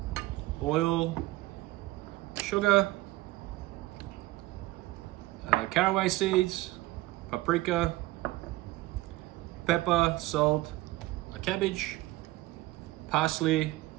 oil, sugar, caraway seeds, paprika, pepper, salt, a cabbage, parsley,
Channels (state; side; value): quieter; left; 18.6 dB